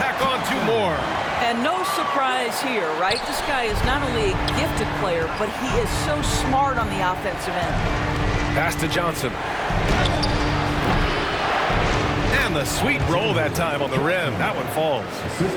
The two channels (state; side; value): identical; both; correlation 1.00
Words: on 2 more. And no surprise here, right? This guy is not only a gifted player, but he is so smart on the offensive end. Pass to Johnson. And the sweet roll that time on the rim. That one falls.